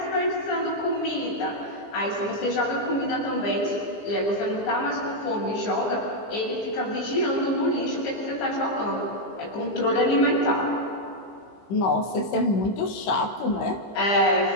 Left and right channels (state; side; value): late; right; 15 ms